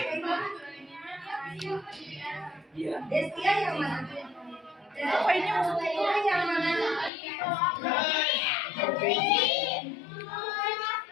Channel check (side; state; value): right; drops out; at 7.1 s